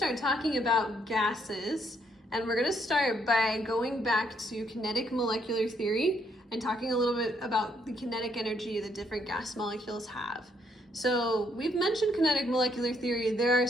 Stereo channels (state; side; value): normal; both; correlation 0.72